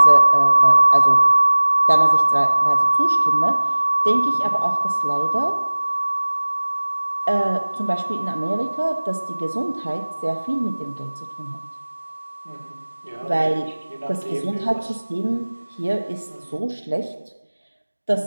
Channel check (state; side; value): inverted; both; correlation -1.00